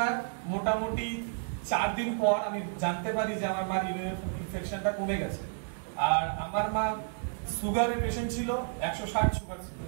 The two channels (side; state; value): left; silent; digital silence